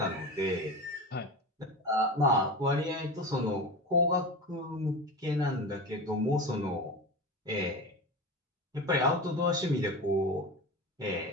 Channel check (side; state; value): both; normal; correlation 0.27